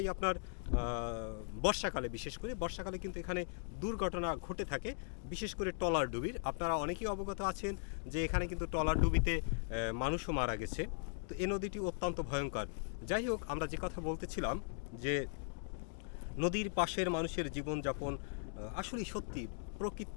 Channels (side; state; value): right; silent; digital silence